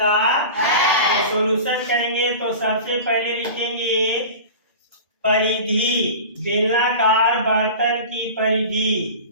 है? तो सॉल्यूशन करेंगे तो सबसे पहले लिखेंगे परिधि, बेलनाकार बर्तन की परिधि।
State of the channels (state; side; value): inverted; both; correlation -0.34